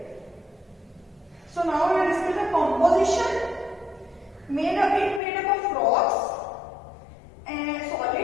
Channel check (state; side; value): drops out; right; at 5.2 s